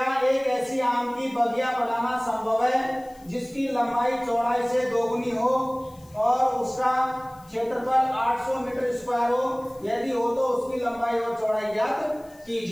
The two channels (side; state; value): left; noise; hiss, 28 dB below the sound